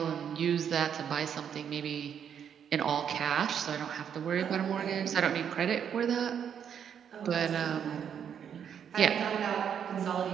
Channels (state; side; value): quieter; left; 8.2 dB